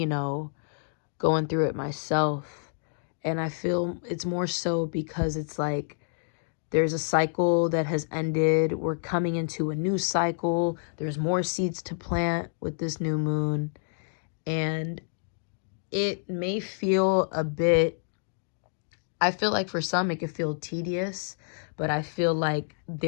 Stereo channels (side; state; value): right; silent; digital silence